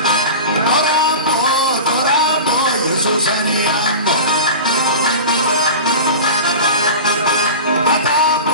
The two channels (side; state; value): both; inverted; correlation -0.32